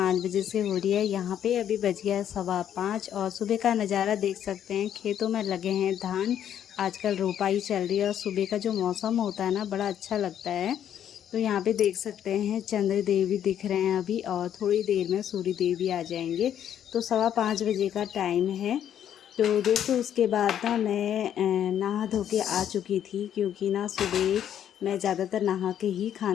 बजे से हो रही है। यहाँ पे अभी बज गया है 5:15 और सुबह का नज़ारा देख सकते हैं। खेतों में लगे हैं धान। आजकल रोपाई चल रही है और सुबह का जो मौसम होता है ना, बड़ा अच्छा लगता है। तो यहाँ पे देख सकते हैं चंद्र देव भी दिख रहे हैं अभी, और थोड़ी देर में सूर्य देव भी आ जाएंगे। तो 5:15 बजे का टाइम है। तो दोस्तों, उसके बाद ना मैं नहा धो के आ चुकी थी, क्योंकि ना सुबह मैं ज़्यादातर नहा के ही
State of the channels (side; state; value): right; quieter; 9.9 dB